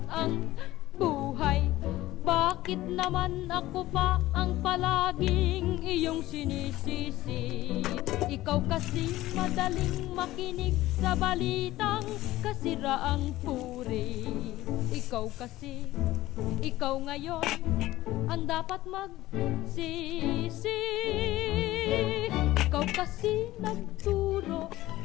ang buhay. Bakit naman ako pa ang palaging iyong sinisisi? Ikaw kasi madaling makinig sa balitang kasiraang puri. Ikaw kasi, ikaw ngayon ang dapat magsisi. Ikaw kasi nagturo,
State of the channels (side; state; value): right; quieter; 16.4 dB